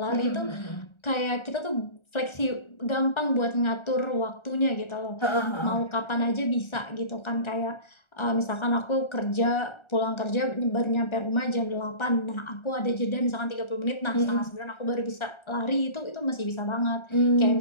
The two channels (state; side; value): late; right; 1.4 ms